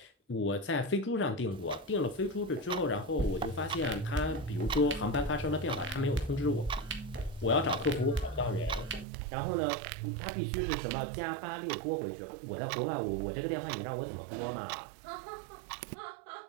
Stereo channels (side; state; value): left; drops out; at 9.1 s